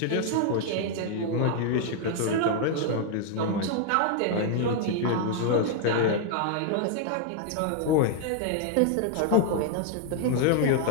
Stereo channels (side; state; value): both; different; correlation 0.00